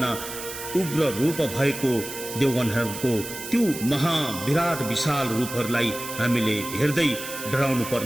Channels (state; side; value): noise; right; hiss, 9 dB below the sound